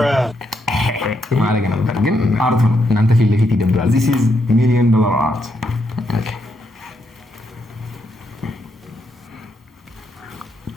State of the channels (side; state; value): both; normal; correlation 0.79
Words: ማድረግ ነበር፣ ግን አርት ነው። እናንተ ፊት ለፊት ይደብራል። this is $1 million art ኦኬ